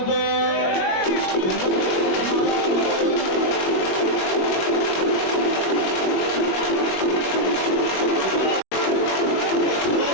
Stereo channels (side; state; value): right; late; 21 ms